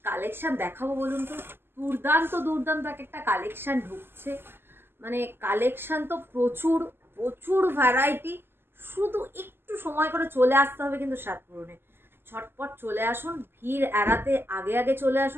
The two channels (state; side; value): late; left; 0.11 ms